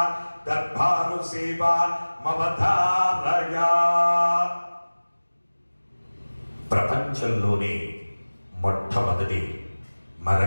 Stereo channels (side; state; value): both; inverted; correlation -1.00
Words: సేవ మవధారయ. ప్రపంచంలోనే మొట్టమొదటి